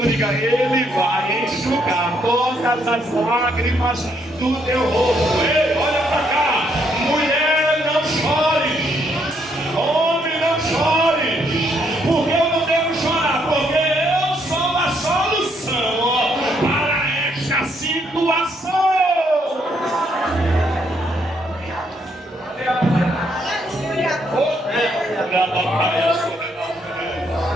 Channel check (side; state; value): both; normal; correlation 0.72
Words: diga: ele vai enxugar todas as lágrimas do teu rosto. Ei, olha para cá, mulher, não chore, homem, não chore, porque eu não devo chorar, porque eu sou a solução para esta situação.